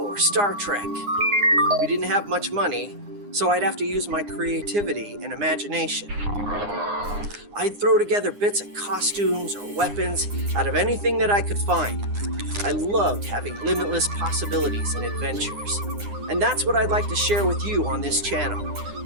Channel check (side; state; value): left; late; 9.8 ms